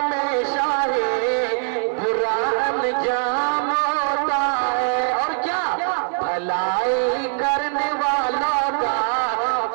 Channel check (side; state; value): left; silent; digital silence